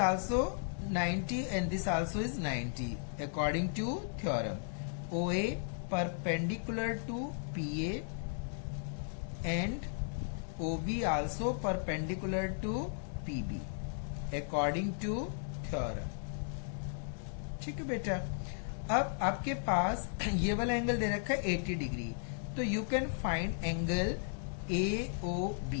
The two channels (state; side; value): silent; right; 54 dB below the other